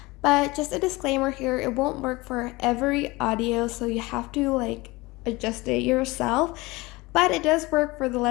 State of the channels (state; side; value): quieter; right; 22.4 dB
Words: but just a disclaimer here, it won't work for every audio, so you have to adjust it yourself. But it does work for the